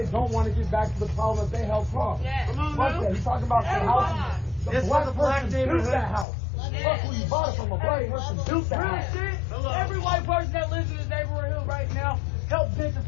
don't want to get back to the problem that they helped cause. Fuck that. You talking about the house? The black person built that house. Fuck who you bought it from. A black person built that house. Every white person that lives in this neighborhood right now helped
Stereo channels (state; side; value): drops out; right; at 6.2 s